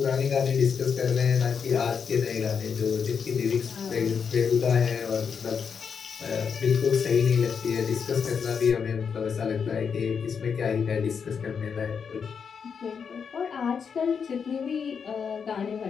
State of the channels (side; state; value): right; quieter; 6.5 dB